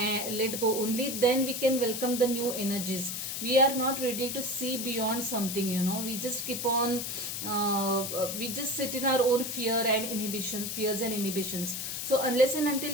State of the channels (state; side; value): noise; left; hiss, 4 dB below the sound